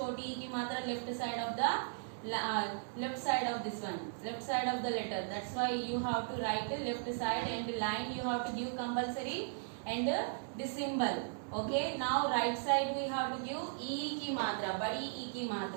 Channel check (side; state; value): left; silent; 53 dB below the other